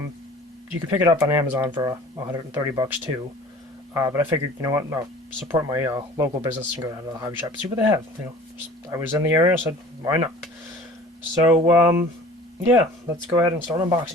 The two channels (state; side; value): normal; both; correlation 0.46